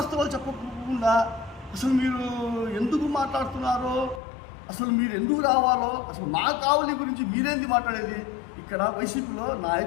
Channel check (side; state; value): right; drops out; at 4.2 s